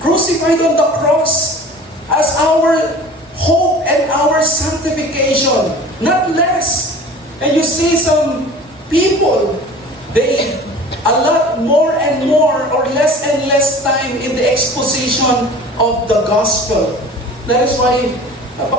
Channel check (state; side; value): normal; both; correlation 0.42